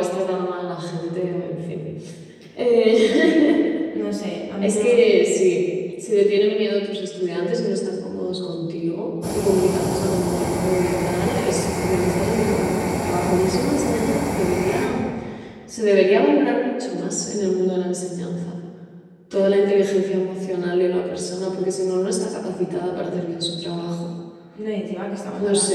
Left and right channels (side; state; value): both; identical; correlation 1.00